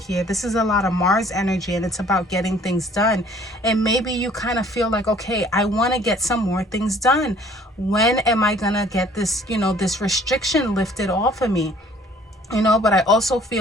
This is a lot of Mars energy, and it's about getting things done. And maybe you kind of feel like, okay, I want to get some more things done. When am I going to get this, you know, this restriction lifted off of me? You know, but I also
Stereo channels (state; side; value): normal; both; correlation 0.56